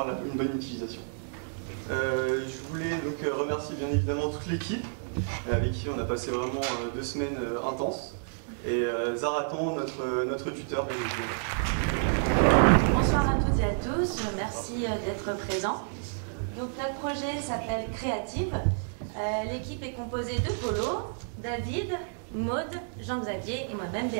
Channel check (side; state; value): left; silent; digital silence